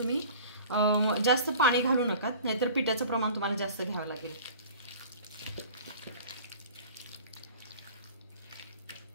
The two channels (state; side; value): inverted; both; correlation -0.43